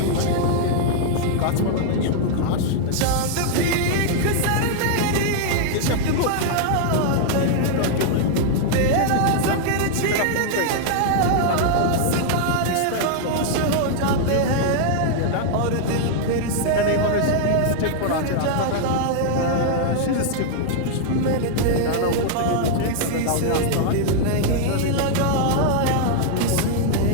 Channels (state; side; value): different; both; correlation -0.01